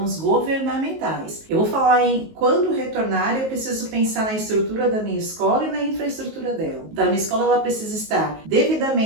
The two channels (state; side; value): late; left; 19 ms